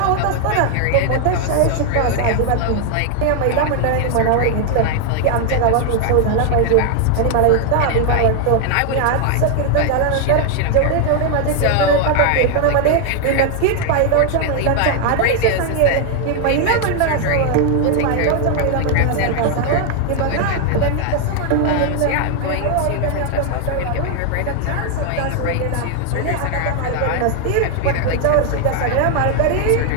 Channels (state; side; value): different; both; correlation 0.00